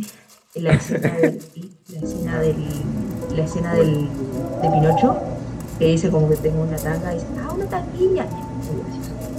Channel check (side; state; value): both; identical; correlation 1.00